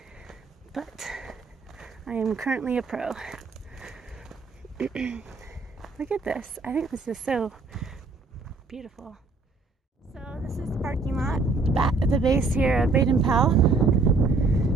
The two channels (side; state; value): left; quieter; 3.7 dB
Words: But I am currently a pro. Look at this. I think this is so beautiful. So this is the parking lot at the base here of Baden Powell.